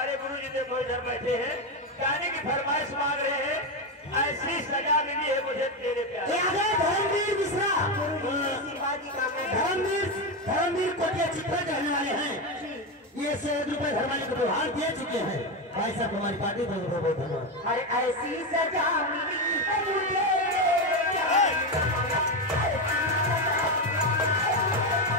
गुरु जी देखो इधर बैठे हैं गाने की फरमाइश मांग रहे हैं। ऐसी सजा मिली है मुझे तेरे प्यारे। धर्मवीर मिश्रा धर्मवीर कोटिया चित्रा कहने वाले हैं। ये 100 रुपए धर्माली को उपहार दे चुके हैं। भाई साहब हमारी पार्टी बहुत बहुत धन्यवाद। अरे ऐसी सजा मिली है मुझे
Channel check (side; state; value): both; normal; correlation 0.11